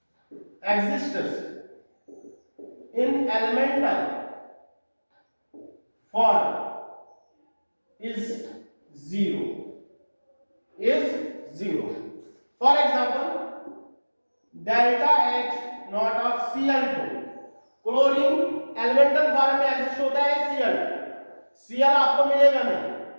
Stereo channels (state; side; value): inverted; both; correlation -1.00